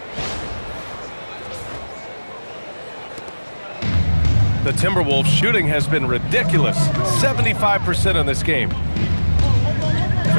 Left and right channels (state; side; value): inverted; both; correlation -1.00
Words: The Timberwolves shooting has been ridiculous. 75% in this game.